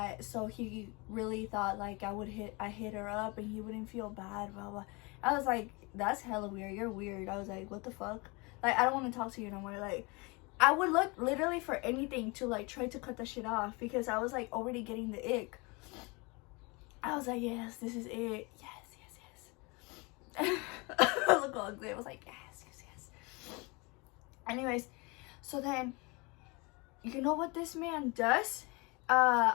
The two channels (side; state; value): right; quieter; 27.6 dB